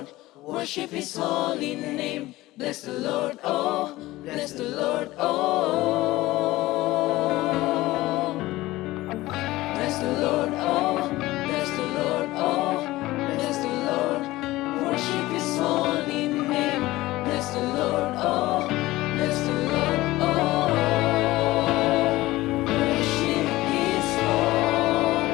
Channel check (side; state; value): right; quieter; 18.1 dB